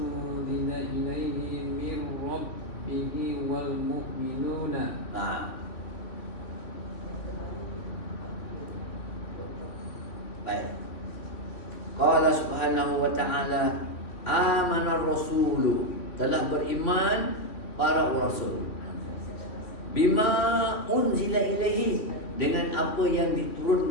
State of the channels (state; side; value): late; right; 2.9 ms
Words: ilaihi min rabbihi wal mu'minuna. Baik. Qala subhanahu wa ta'ala. Amana rasulu, telah beriman para rasul. Bima unzila ilaihi, dengan apa yang